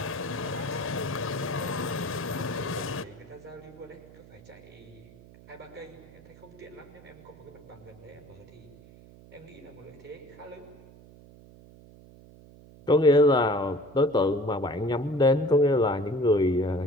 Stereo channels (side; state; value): right; noise; hum, 22 dB below the sound